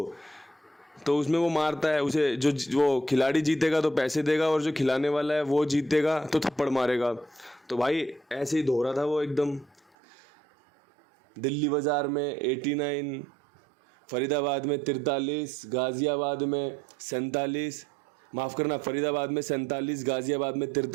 तो उसमें वो मारता है उसे, जो वो खिलाड़ी जीतेगा तो पैसे देगा और जो खिलाने वाला है वो जीतेगा तो थप्पड़ मारेगा। तो भाई ऐसे ही धो रहा था वो एकदम। दिल्ली बाज़ार में 89, फरीदाबाद में 43, गाज़ियाबाद में 47, माफ़ करना, फरीदाबाद में 47, गाज़ियाबाद में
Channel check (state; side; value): drops out; left; at 10.0 s